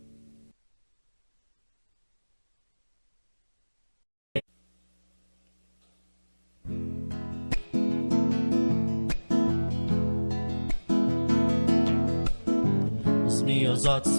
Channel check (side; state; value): both; inverted; correlation -1.00